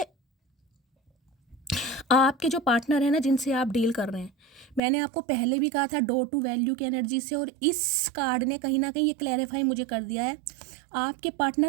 आपके जो पार्टनर है ना, जिनसे आप डील कर रहे हैं, मैंने आपको पहले भी कहा था डोर टू वैल्यू की एनर्जी से, और इस कार्ड ने कहीं ना कहीं ये क्लैरिफाई मुझे कर दिया है। आपके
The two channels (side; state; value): left; drops out; at 4.8 s